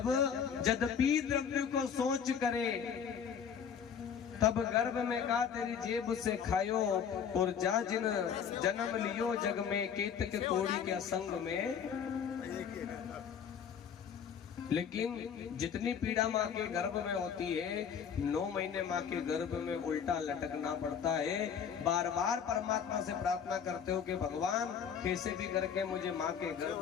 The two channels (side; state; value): right; quieter; 7.5 dB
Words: यद्यपि द्रव्य को सोच करे तब गर्भ में का तेरी जेब से खायो, और जा जिन जन्म लियो जग में केतक कोड़ी के संग में। लेकिन जितनी पीड़ा माँ के गर्भ में होती है, 9 महीने माँ के गर्भ में उल्टा लटकना पड़ता है। बार बार परमात्मा से प्रार्थना करते हो कि भगवान कैसे भी करके मुझे माँ के